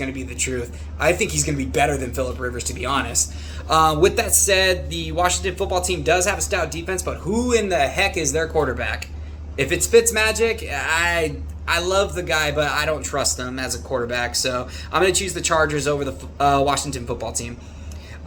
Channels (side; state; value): both; identical; correlation 1.00